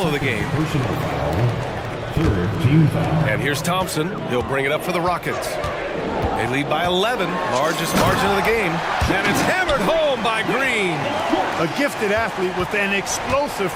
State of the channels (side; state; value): both; identical; correlation 1.00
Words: of the game. And here's Thompson. He'll bring it up for the Rockets. They lead by 11, largest margin of the game. And it's hammered home by Green. A gifted athlete with an explosive